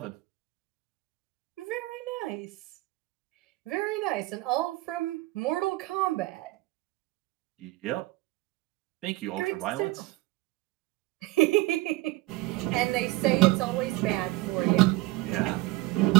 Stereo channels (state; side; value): quieter; left; 19.5 dB